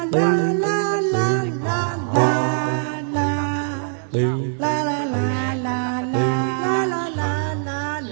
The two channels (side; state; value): left; silent; digital silence